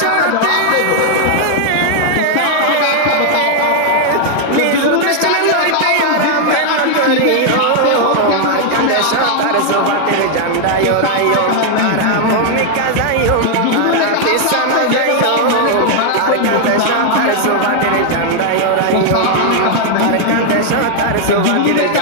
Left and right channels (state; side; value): different; both; correlation 0.00